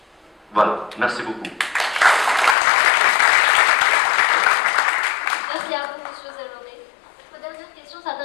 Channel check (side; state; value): right; drops out; at 2.6 s